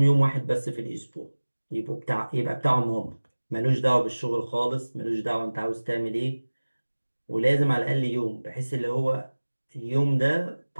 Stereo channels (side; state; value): both; inverted; correlation -1.00